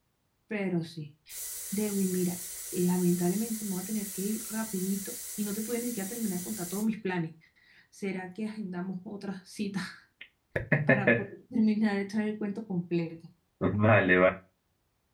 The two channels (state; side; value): identical; both; correlation 1.00